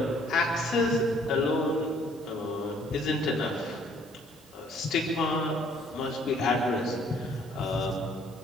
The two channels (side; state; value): both; normal; correlation 0.61